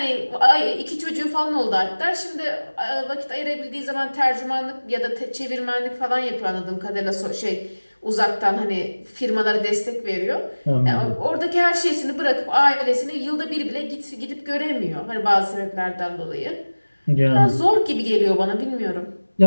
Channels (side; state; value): both; inverted; correlation -1.00